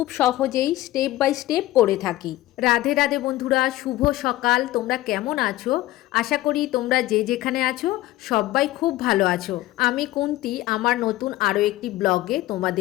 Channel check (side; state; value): right; quieter; 16.5 dB